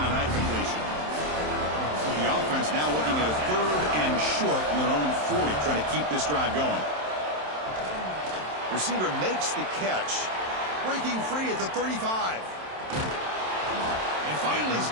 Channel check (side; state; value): left; late; 27 ms